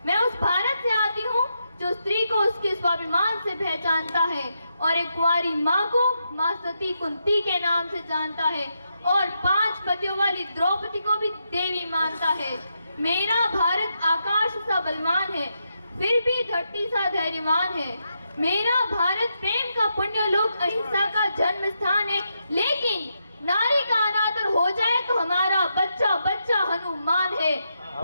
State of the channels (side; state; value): both; inverted; correlation -0.83